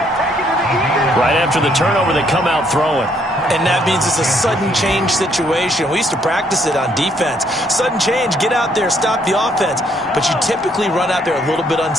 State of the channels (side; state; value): both; normal; correlation 0.69